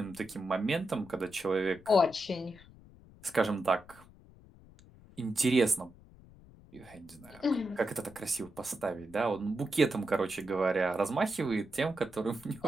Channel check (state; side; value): noise; left; rumble, 22 dB below the sound